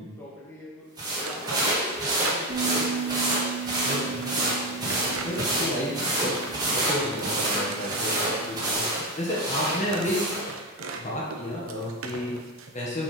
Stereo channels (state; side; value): normal; both; correlation 0.14